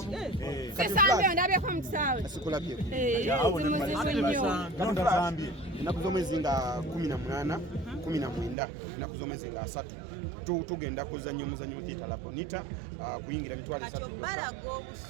sesambe ndabye ko mutsawe Sikulabye. Kalonda zambye. Enaku z'omwezi nga 18, 19, enaku z'omwezi nga 3 tugenda kuzannya omuzannyo oguyita Labonita kuyingira mitwalo 3. kati obalaga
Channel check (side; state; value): left; drops out; at 8.6 s